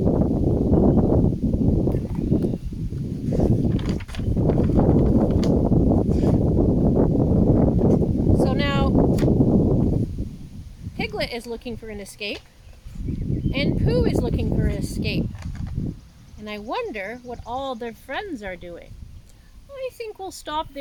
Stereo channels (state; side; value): identical; both; correlation 1.00